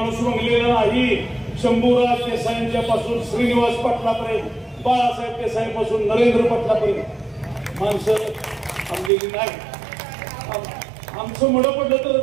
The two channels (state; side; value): drops out; left; at 9.1 s